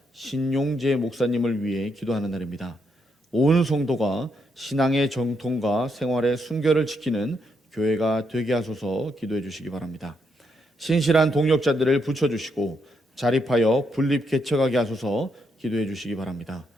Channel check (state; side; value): normal; both; correlation 0.78